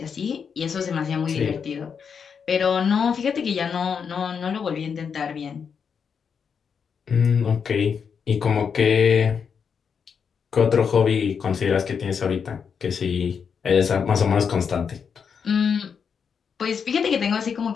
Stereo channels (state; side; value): quieter; right; 6.6 dB